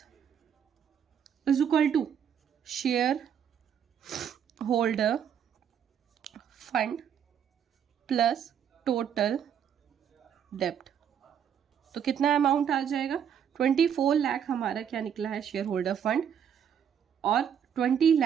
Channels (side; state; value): left; quieter; 8.4 dB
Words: is equal to share holder fund plus total डेप्ट, तो कितना अमाउंट आ जाएगा, 24 लाख हमारा क्या निकला है शेयर होल्डर फंड, और 20